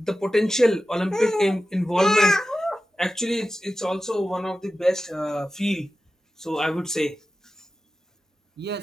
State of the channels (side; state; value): both; normal; correlation 0.93